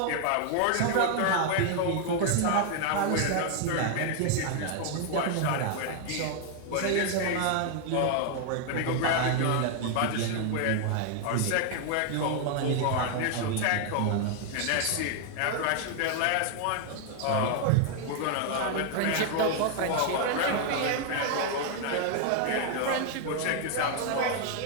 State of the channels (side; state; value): both; different; correlation 0.00